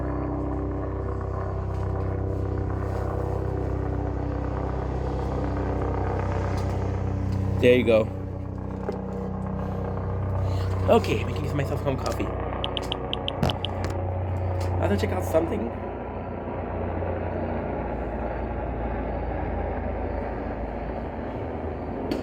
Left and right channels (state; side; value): identical; both; correlation 1.00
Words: There you go. Okay, making myself some coffee. I have to check out something.